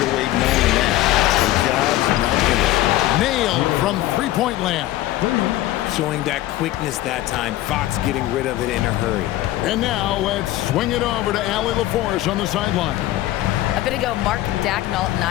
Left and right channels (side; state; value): right; quieter; 15.4 dB